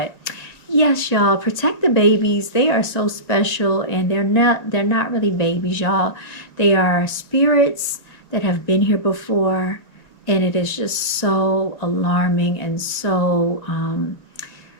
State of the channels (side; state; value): right; late; 1.9 ms